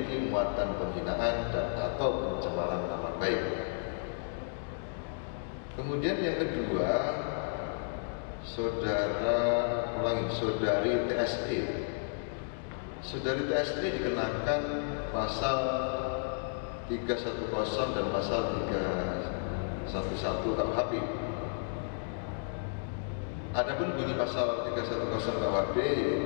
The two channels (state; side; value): silent; right; digital silence